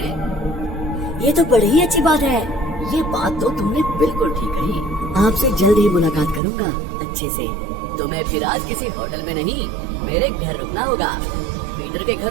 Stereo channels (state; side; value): drops out; left; at 6.4 s